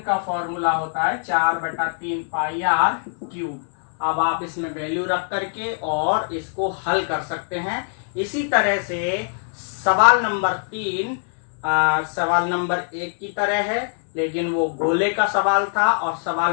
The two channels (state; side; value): silent; right; digital silence